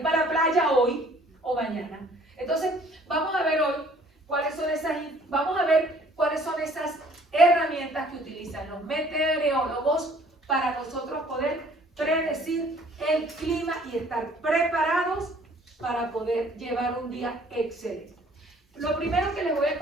para la playa hoy o mañana. Entonces, vamos a ver hoy cuáles son esas herramientas que utilizan los meteorólogos para nosotros poder predecir el clima y estar preparados para poder llevar un día excelente. Lo primero que les voy a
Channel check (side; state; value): both; normal; correlation 0.56